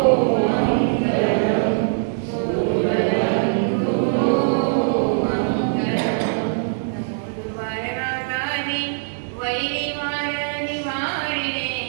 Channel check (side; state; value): left; silent; 59 dB below the other